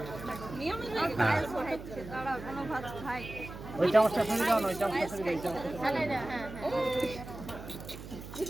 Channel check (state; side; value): noise; right; hum, 12 dB below the sound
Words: ওই চামচটা ফেলে দাও না, ওই চামচটা ফেলে দাও, ওই চামচটা ফেলে দাও।